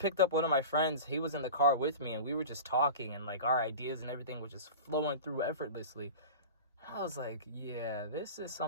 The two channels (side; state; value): both; inverted; correlation -0.33